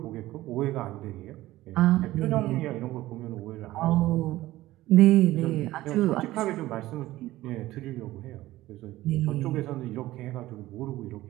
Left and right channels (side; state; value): left; quieter; 16.5 dB